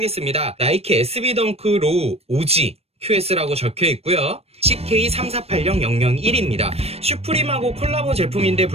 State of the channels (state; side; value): late; left; 0.29 ms